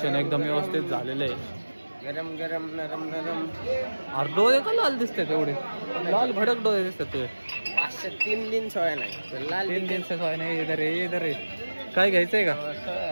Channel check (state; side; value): inverted; both; correlation -1.00